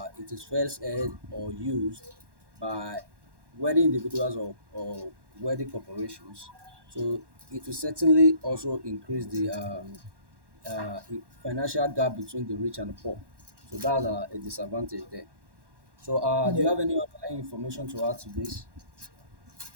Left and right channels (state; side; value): late; left; 1.1 ms